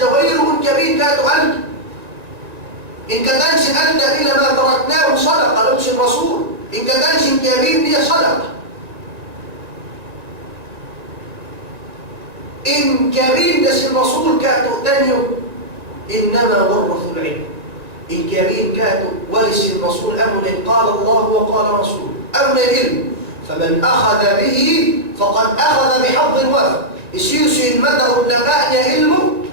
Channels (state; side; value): late; left; 1.9 ms